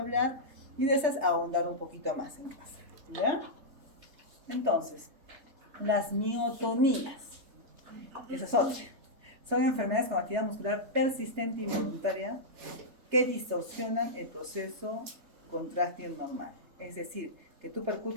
y de esas ahondar un poquito más en casa, ¿ya? Entonces, las miotonías, esas otras, son enfermedades con actividad muscular persistente e involuntaria que distorsionan el proceso contráctil normal. Es decir, que tú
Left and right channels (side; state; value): left; late; 3.3 ms